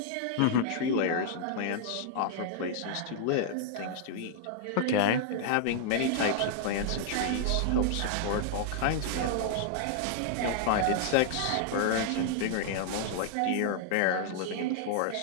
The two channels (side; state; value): both; different; correlation -0.01